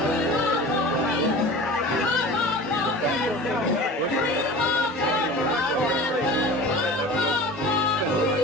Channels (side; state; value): both; normal; correlation 0.38